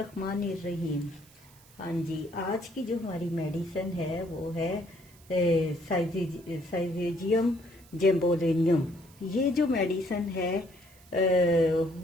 الرحیم۔ ہاں جی، آج کی جو ہماری میڈیسن ہے وہ ہے سائزیجیم جیمبولینیم۔ یہ جو میڈیسن ہے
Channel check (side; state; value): right; noise; hiss, 26 dB below the sound